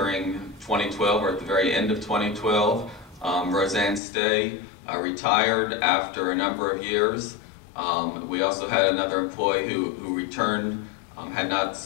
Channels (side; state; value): right; drops out; at 4.0 s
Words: 2012, or at the very end of 2012. Roseanne Stay retired after a number of years. We also had another employee who returned, had not